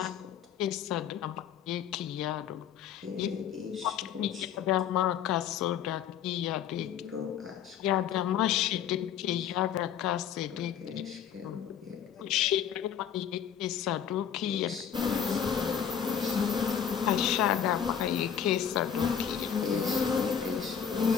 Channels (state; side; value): quieter; right; 8.5 dB